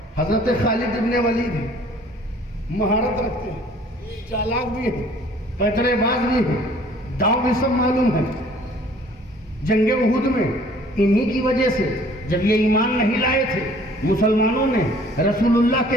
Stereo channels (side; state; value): both; normal; correlation 0.54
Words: حضرت خالد ابن ولید مہارت رکھتے ہیں، چالاک بھی ہیں، پیترے باز بھی ہیں، داؤں بھی سب معلوم ہے۔ جنگ احد میں انہی کی وجہ سے جب یہ ایمان نہیں لائے تھے، مسلمانوں نے رسول اللہ